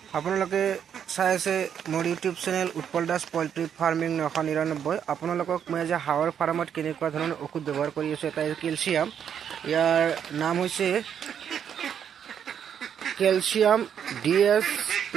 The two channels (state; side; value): quieter; left; 8.4 dB